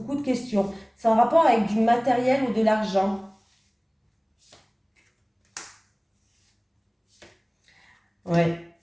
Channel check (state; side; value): identical; both; correlation 1.00